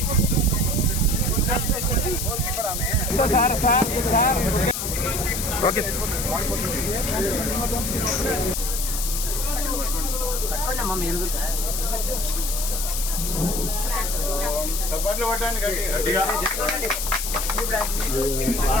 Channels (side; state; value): left; noise; hiss, 3 dB below the sound